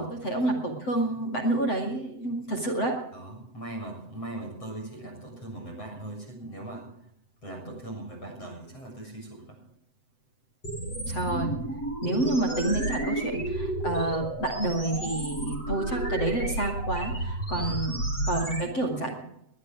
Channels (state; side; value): late; right; 7.8 ms